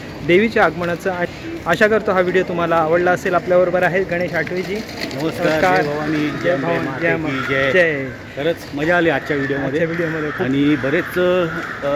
देवीच्या आगमनाचं आशा करतो हा व्हिडिओ तुम्हाला आवडला असेल. आपल्याबरोबर आहेत गणेश आठवेजी. नमस्कार. जय भवानी, जय भवानी, जय. खरंच मजा आली आजच्या व्हिडिओमध्ये आणि बरेच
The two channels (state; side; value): identical; both; correlation 1.00